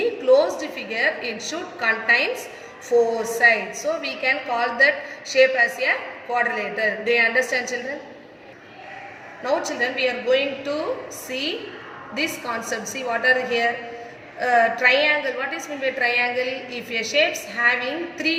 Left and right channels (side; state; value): both; identical; correlation 1.00